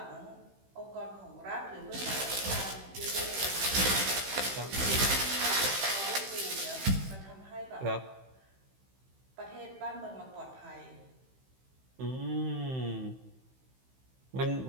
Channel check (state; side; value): late; left; 15 ms